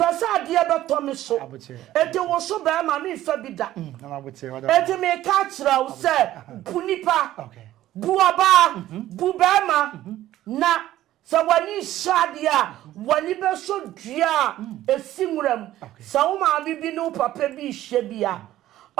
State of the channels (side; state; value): left; quieter; 14.0 dB